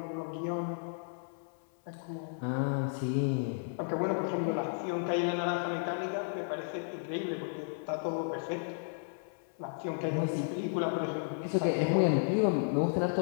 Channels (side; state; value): right; silent; 56 dB below the other